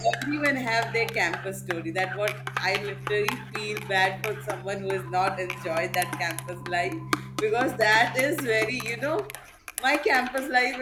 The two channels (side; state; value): both; identical; correlation 1.00